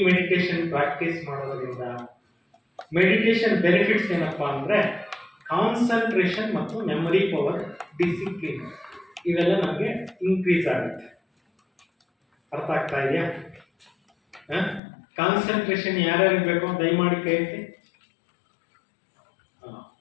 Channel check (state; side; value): drops out; right; at 14.8 s